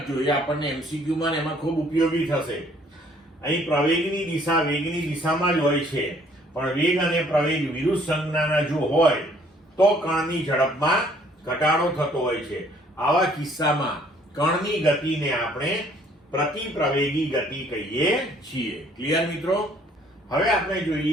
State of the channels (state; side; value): normal; both; correlation 0.60